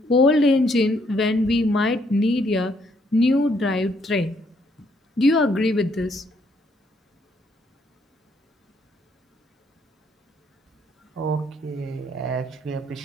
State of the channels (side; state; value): both; normal; correlation 0.70